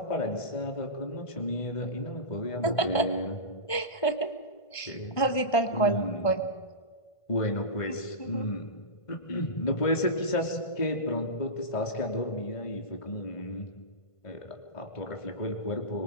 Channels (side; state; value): right; late; 1.5 ms